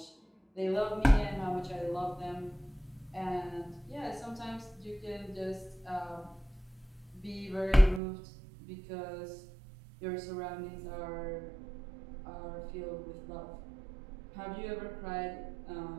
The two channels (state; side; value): drops out; left; at 8.0 s